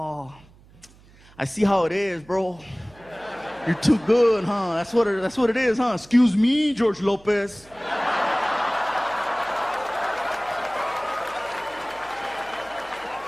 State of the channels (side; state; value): right; noise; hum, 26 dB below the sound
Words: I see how it is, bro. You're too good, huh? That's what it is, huh? Excuse me, George Lopez."